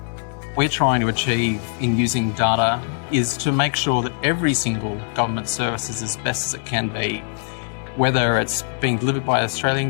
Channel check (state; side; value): silent; right; 64 dB below the other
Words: We're trying to achieve in using data is to make sure that every single government service is as best as it can be, whether it's being delivered by an Australian